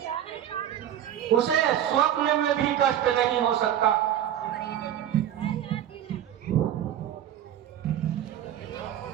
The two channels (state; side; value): quieter; left; 10.9 dB